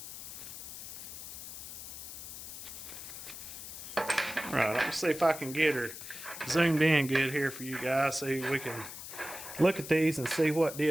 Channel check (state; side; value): noise; left; hiss, 10 dB below the sound